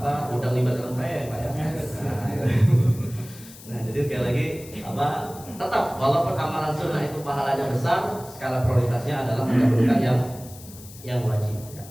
udang libat dalam kaya Pak ya. Nah, jadi sekali lagi tetap walaupun amalan sunnah itu pahalanya besar, skala prioritasnya adalah mendahulukan yang wajib. Ya,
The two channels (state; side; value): noise; left; hiss, 18 dB below the sound